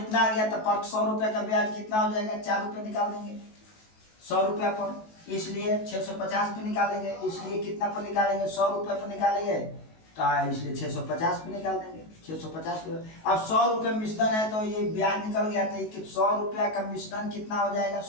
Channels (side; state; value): right; late; 19 ms